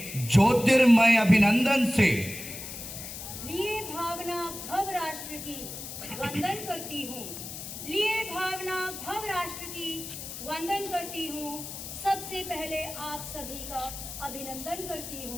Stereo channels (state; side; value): noise; left; hiss, 9 dB below the sound